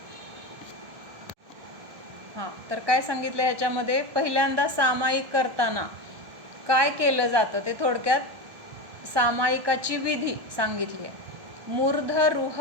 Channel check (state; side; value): late; left; 1.2 ms